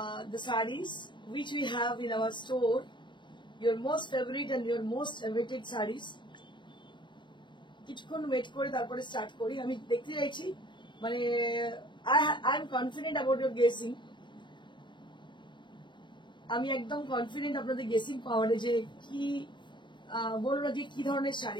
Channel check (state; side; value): late; right; 0.23 ms